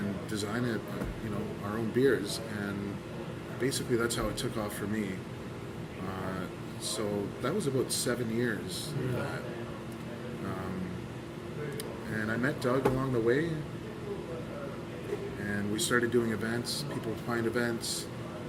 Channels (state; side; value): identical; both; correlation 1.00